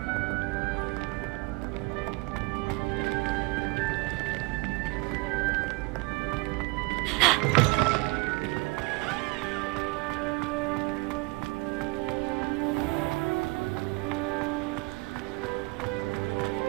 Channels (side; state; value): left; quieter; 26.3 dB